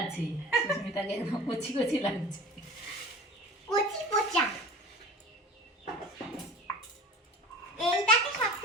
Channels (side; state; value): both; normal; correlation 0.38